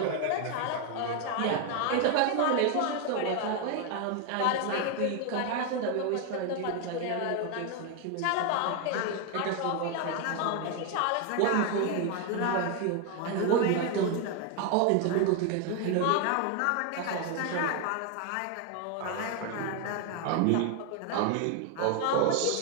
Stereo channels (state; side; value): different; both; correlation 0.01